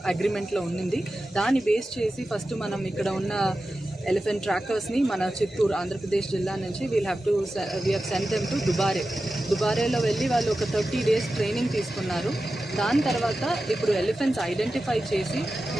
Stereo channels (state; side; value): normal; both; correlation 0.93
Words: అగ్రిమెంట్లో ఉన్నింది. దాన్ని బేస్ చేసి ఫస్ట్ మనం ఇక్కడ ఉన్న ఎలిఫెంట్ ట్రాకర్స్ని మన చిత్తూరు ఆంధ్రప్రదేశ్ జిల్లా నుంచి we have sent them to దుబారేలో వెళ్ళి వాళ్ళు ఒక 30 days ట్రైనింగ్ తీసుకున్నారు. దాని తర్వాత ఇప్పుడు ఎలిఫెంట్స్ ఐడెంటిఫై చేసి